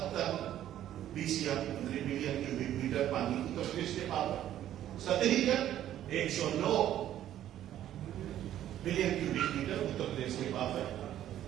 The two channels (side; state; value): left; quieter; 11.9 dB